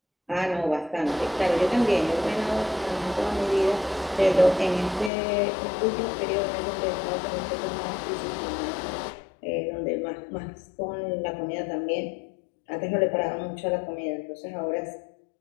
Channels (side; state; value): right; drops out; at 5.1 s